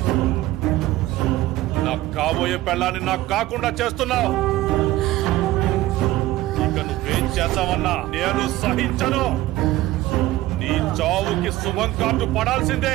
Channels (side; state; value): left; quieter; 16.3 dB